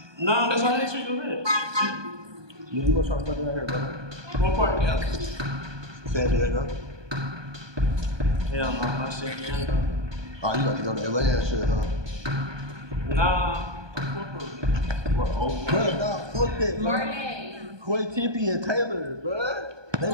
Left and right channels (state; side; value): late; left; 1.2 ms